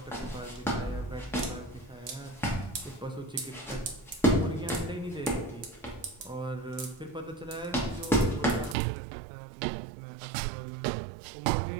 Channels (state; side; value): drops out; left; at 8.8 s